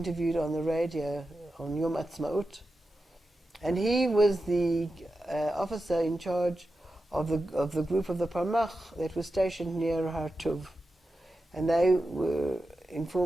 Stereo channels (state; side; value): normal; both; correlation 0.91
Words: on the radio on Yom Ha'atzmaut, and he was the officer in charge of the group of the Palmach that was stationed near Har Tov. And they were